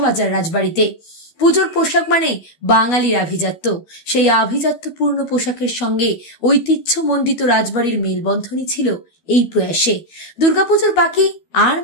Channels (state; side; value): late; right; 12 ms